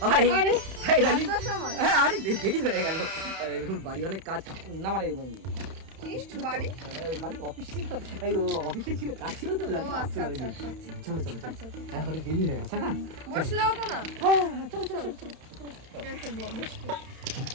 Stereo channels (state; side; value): late; left; 31 ms